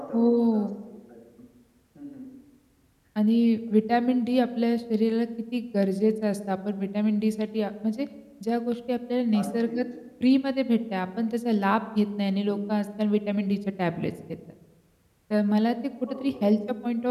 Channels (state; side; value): identical; both; correlation 1.00